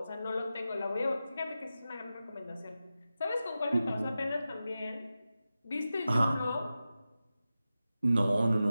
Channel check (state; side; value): inverted; both; correlation -0.93